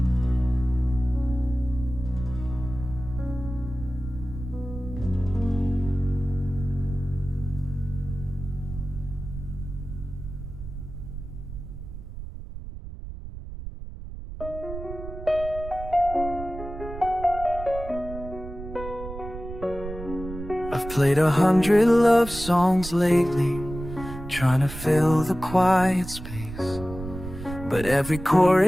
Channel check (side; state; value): right; noise; rumble, 10 dB below the sound